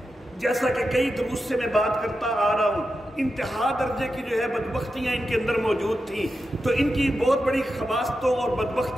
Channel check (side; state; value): both; normal; correlation 0.89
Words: جیسا کہ کئی دروس سے میں بات کرتا آ رہا ہوں، انتہا درجے کی جو ہے بدبختیاں ان کے اندر موجود تھیں، تو ان کی بہت بڑی خباستوں اور